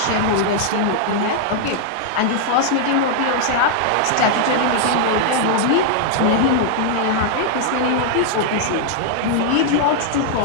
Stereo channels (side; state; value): both; different; correlation -0.01